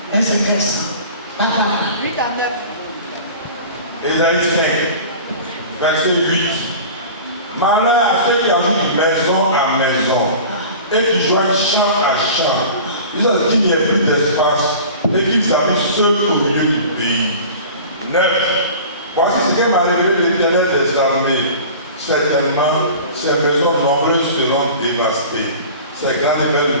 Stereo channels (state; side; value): inverted; both; correlation -0.39